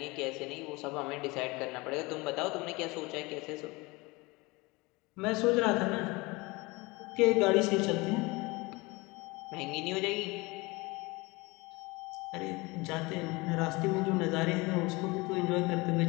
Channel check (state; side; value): quieter; right; 24.0 dB